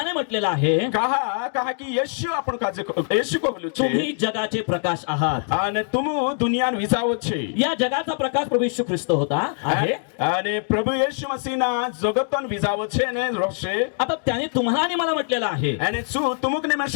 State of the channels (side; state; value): right; silent; 63 dB below the other